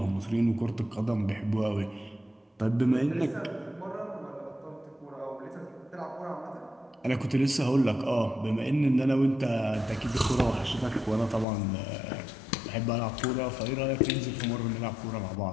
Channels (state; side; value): drops out; right; at 11.5 s